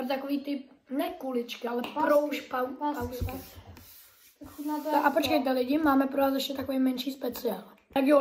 takový typ, ne kuličky, ale pausky. Chutná to A počkejte lidi, máme pro vás ještě takový menší speciál. Tak jo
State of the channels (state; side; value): identical; both; correlation 1.00